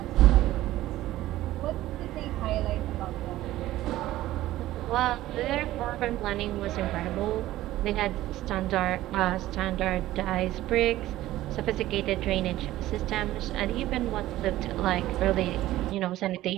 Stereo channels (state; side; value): quieter; left; 15.3 dB